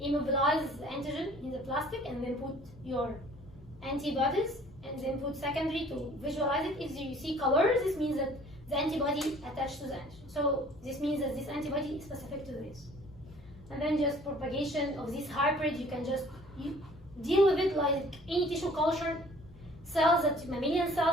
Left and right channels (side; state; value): both; normal; correlation 0.53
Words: the antigen in the plastic, and then put your antibodies, and then put secondary to visualize it. If you see colors, this means that the antibody attached to the antigen. So this means that this antibody is specific to this. And then just propagation of this hybrid, you can just deal with it like any tissue culture cells, mammalian